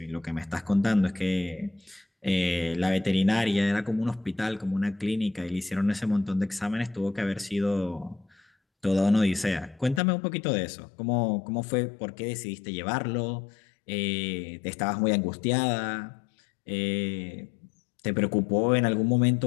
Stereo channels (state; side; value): drops out; right; at 10.0 s